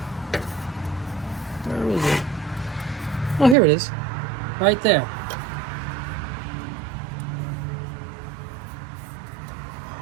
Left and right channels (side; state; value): left; drops out; at 3.6 s